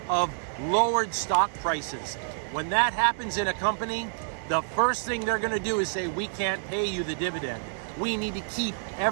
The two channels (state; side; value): silent; left; digital silence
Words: of lowered stock prices. When that happens in a company, the first thing they're going to do is say, we can't pay you the dividend. We need to keep